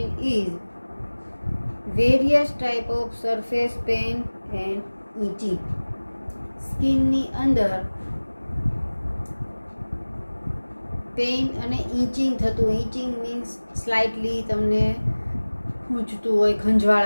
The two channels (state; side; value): inverted; both; correlation -1.00